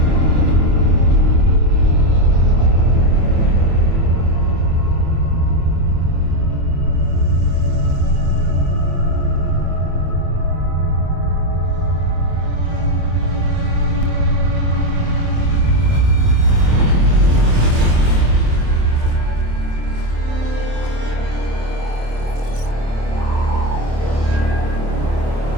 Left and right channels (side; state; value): left; late; 27 ms